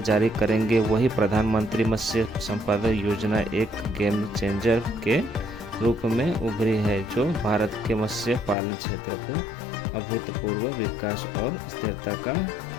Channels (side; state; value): right; drops out; at 8.6 s